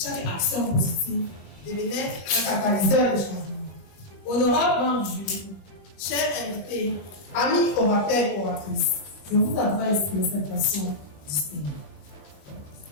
action positive devenait un catalyseur de changement? Honorable membre du jury, chers invités, amis orateurs et oratrices, je vous adresse une présentation distinguée.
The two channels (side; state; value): right; late; 21 ms